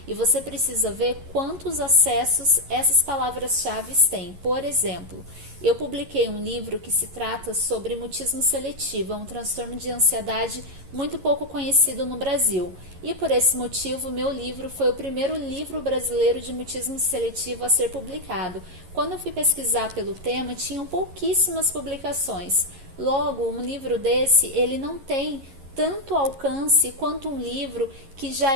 e você precisa ver quantos acessos essas palavras-chave têm. Por exemplo, eu publiquei um livro que se trata sobre mutismo seletivo, é um transtorno de ansiedade muito pouco conhecido no Brasil. E por esse motivo, meu livro foi o primeiro livro brasileiro de mutismo seletivo a ser publicado. Quando eu fui pesquisar pelo tema, tinham pouquíssimas publicações. Logo, um livro desse, ele não tem tanto alcance quanto um livro que já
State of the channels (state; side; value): late; left; 11 ms